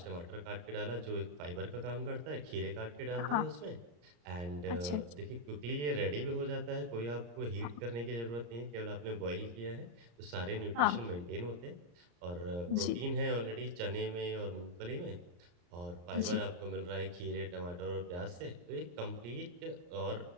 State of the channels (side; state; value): left; late; 34 ms